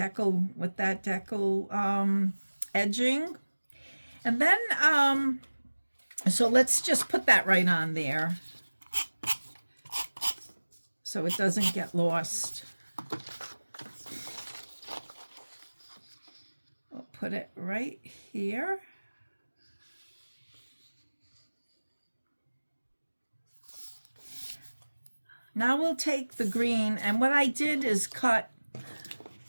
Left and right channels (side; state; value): both; inverted; correlation -1.00